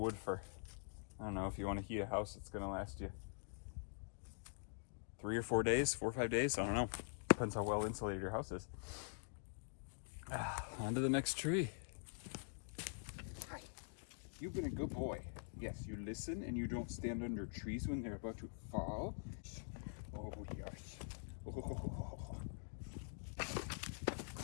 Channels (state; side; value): silent; right; digital silence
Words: for, I don't know, if you want to heat a house, it's going to last you 3 or 4 days, 4 or 5 days. I don't know. Depends how well insulated your house is. On to the next tree. Hi. You've been a good boy. Yes, you listen and you don't stand under trees when they're about to fall. Oh, yes. Oh.